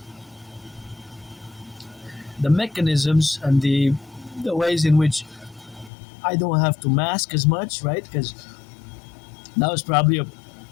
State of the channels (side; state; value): right; drops out; at 5.9 s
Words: the mechanisms and the ways in which I don't have to mask as much, right? Because that was probably